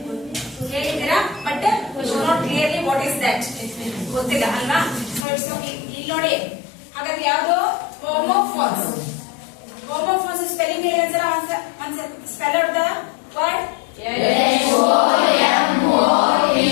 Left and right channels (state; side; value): drops out; right; at 5.2 s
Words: ಹೇಳಿದಿರಾ, but you should not clearly what is that ಗೊತ್ತಿಲ್ಲ ಅಲ್ವಾ? So it's okay. ಇಲ್ಲಿ ನೋಡಿ, ಹಾಗಾದ್ರೆ ಯಾವುದು homophones? Homophones spelling ಹೇಳಿ ಒಂದ್ಸಲ spell out the word.